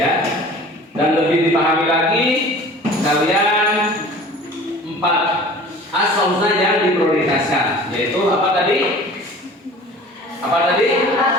Dan lebih dipahami lagi, kalian 4 Asmaul Husna yang diprioritaskan, yaitu apa tadi? Apa tadi?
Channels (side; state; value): both; normal; correlation 0.44